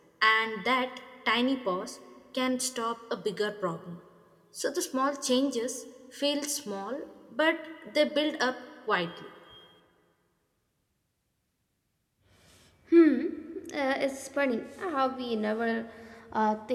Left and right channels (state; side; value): identical; both; correlation 1.00